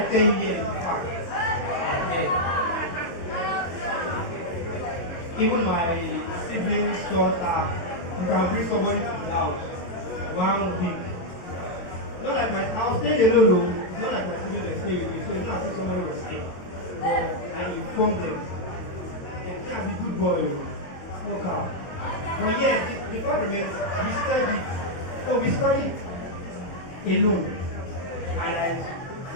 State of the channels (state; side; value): late; right; 22 ms